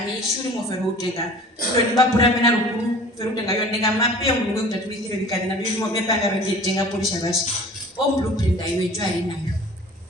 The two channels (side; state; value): both; normal; correlation 0.45